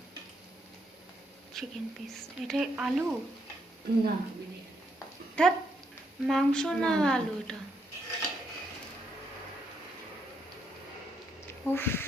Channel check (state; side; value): normal; both; correlation 0.77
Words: চিকেন পিস, এটা আলু? না, ধ্যাৎ, মাংস না আলু এটা। উফ,